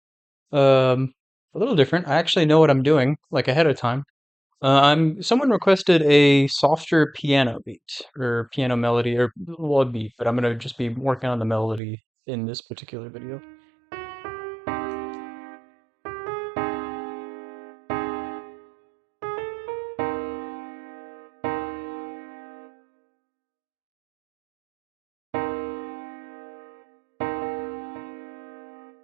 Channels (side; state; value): left; drops out; at 11.8 s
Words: um, a little different. I actually know what I'm doing, like ahead of time. Someone requested a softer piano beat or piano melody or well, a beat, but I'm gonna just be working on the melody in this particular video.